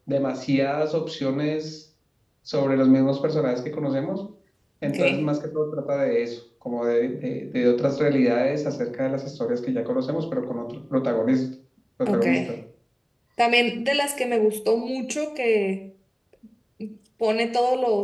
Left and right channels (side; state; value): both; identical; correlation 1.00